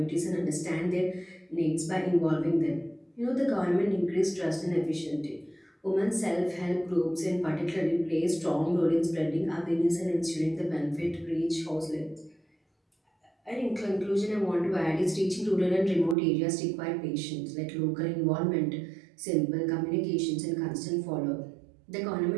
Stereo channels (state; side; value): drops out; left; at 16.2 s